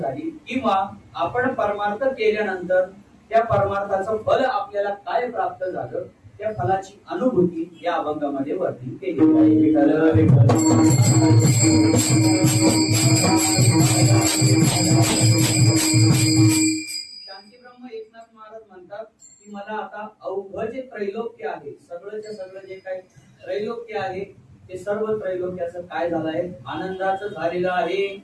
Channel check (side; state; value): both; identical; correlation 1.00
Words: किंवा आपण परमार्थ केल्यानंतर त्या परमार्थाचं फल आपल्याला काय प्राप्त झालं त्या फलाची अनुभूती या अभंगामध्ये वर्णन केली आहे. विठ्ठल विठ्ठल शांती ब्रह्म एकनाथ महाराज म्हणतात की मला आता अवघ जे त्रैलोक्य आहे सगळंच्या सगळं जे काही त्रैलोक्य आहे ते सर्व त्रैलोक्याचं काय झालं आहे आनंदाचं झालेलं आहे.